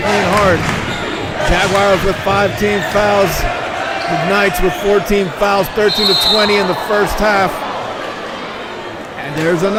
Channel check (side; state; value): both; identical; correlation 1.00